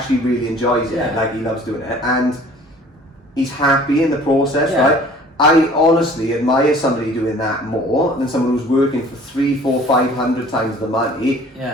really enjoys it. Like he loves doing it, and he's happy in the process, right? I honestly admire somebody doing that more than someone who's working for 300, 400, 500 times the money,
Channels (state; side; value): normal; both; correlation 0.50